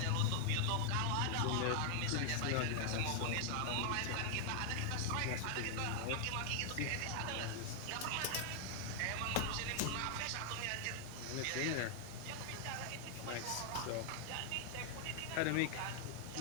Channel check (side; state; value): both; different; correlation 0.00